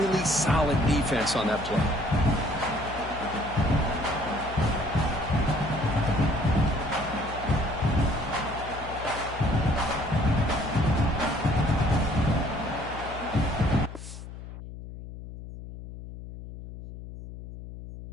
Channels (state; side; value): noise; left; hum, 12 dB below the sound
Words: solid defense on that play.